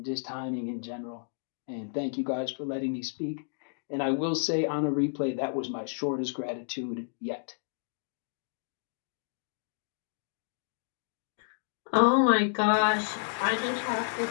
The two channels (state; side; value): silent; right; digital silence